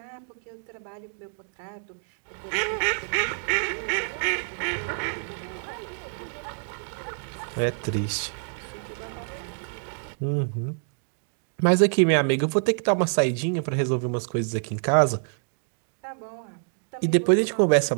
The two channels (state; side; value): silent; left; digital silence